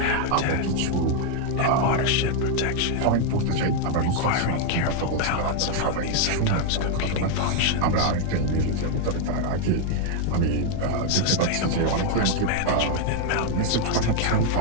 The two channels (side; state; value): both; different; correlation 0.00